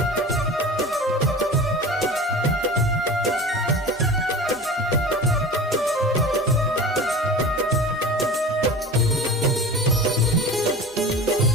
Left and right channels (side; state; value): both; normal; correlation 0.35